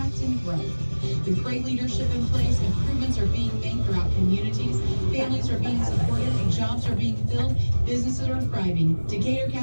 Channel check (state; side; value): inverted; both; correlation -1.00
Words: and growth. With great leadership in place, improvements are being made throughout communities, families are being supported, and jobs are being filled, businesses are thriving. Decatur